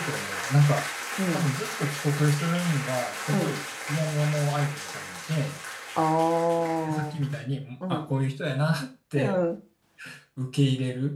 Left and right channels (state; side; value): identical; both; correlation 1.00